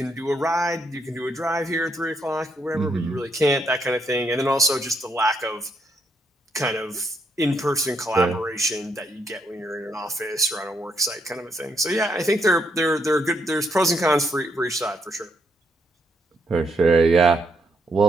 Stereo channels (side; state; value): both; normal; correlation 0.75